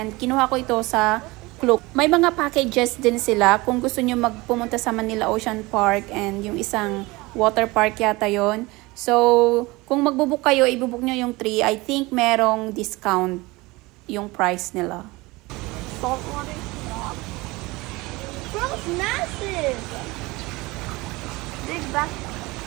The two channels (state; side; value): quieter; left; 22.3 dB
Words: kinuha ko ito sa Klook. May mga packages din sila kung gusto nyo magpumunta sa Manila Ocean Park and yung isang water park yata yon. So, kung magbubook kayo, ibubook nyo yung 3. I think merong discount yung price nila. Saltwater swamp. Bro, it's massive. Big back.